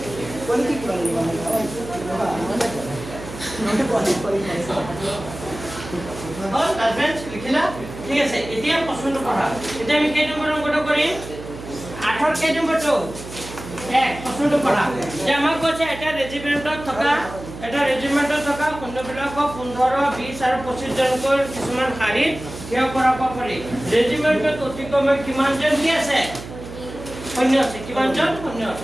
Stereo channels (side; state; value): right; noise; hum, 12 dB below the sound